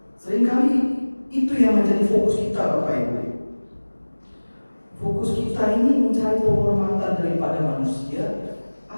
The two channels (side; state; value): both; inverted; correlation -1.00